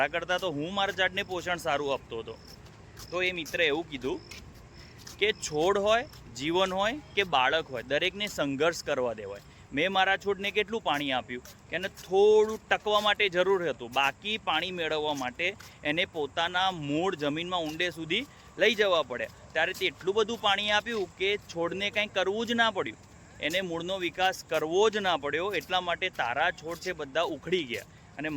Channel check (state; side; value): identical; both; correlation 1.00